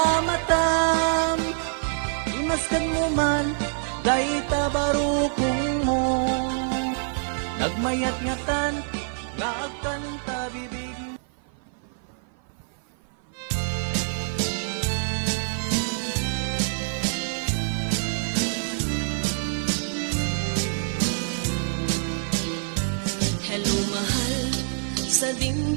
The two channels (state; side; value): silent; left; 55 dB below the other